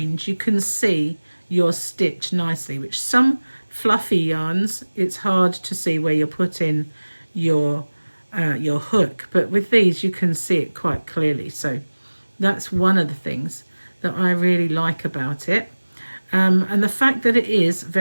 you can see your stitch nicely, which some fluffy yarns, it's hard to see where you're putting your hook, but with these you can see it quite clearly. So that's one of the things that I really like about it, and the fact that it is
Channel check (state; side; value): inverted; both; correlation -1.00